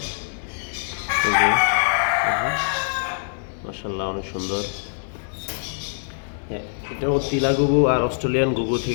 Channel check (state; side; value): silent; right; 55 dB below the other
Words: এই যে মাশাআল্লাহ, অনেক সুন্দর। হ্যাঁ, এটাও তিলা গুগু আর অস্ট্রেলিয়ান গুগু